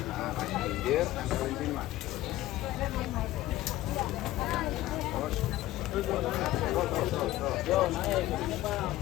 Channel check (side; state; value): right; quieter; 15.9 dB